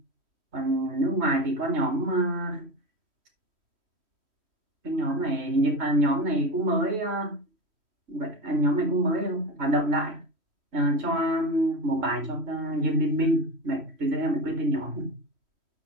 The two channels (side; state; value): left; late; 3.1 ms